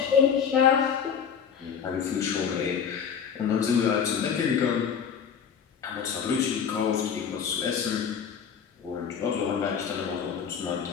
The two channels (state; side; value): quieter; right; 7.3 dB